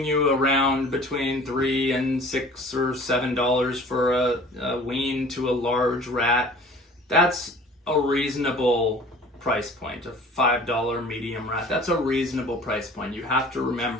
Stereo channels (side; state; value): both; normal; correlation 0.47